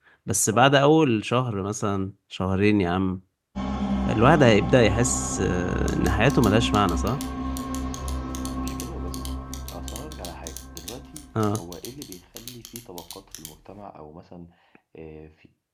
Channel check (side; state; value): both; identical; correlation 1.00